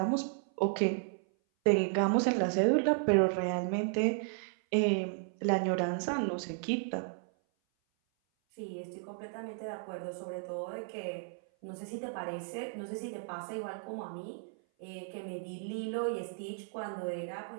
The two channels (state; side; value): silent; left; 55 dB below the other